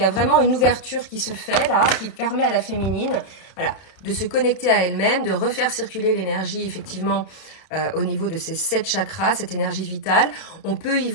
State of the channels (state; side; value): late; right; 32 ms